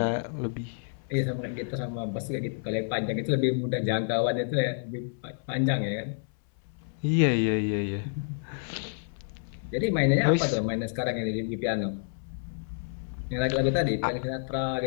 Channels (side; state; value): right; silent; 59 dB below the other